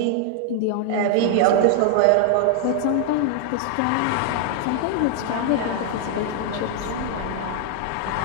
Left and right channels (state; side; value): different; both; correlation 0.00